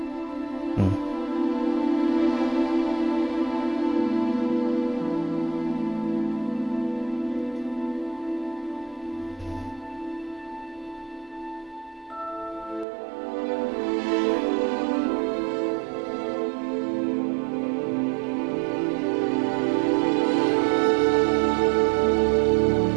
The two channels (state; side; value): drops out; left; at 12.9 s